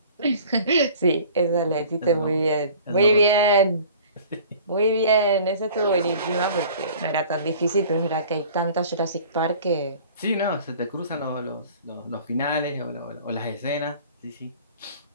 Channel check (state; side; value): inverted; both; correlation -0.47